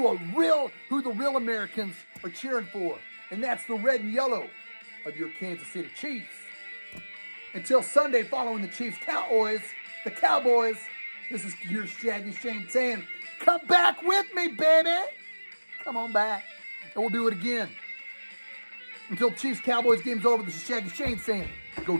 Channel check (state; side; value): inverted; both; correlation -1.00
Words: the real Americans are cheering for. And that's the red and yellow of your Kansas City Chiefs. Until Sunday, following the Chiefs the Cowboys, this is your Shaggyshane saying, come back with me, baby. Come on back. And we'll do it again. Until Chiefs Cowboys game's over, this is Shaggyshane saying, go